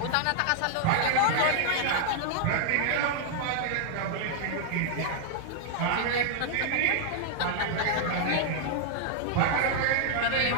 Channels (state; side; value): different; both; correlation -0.01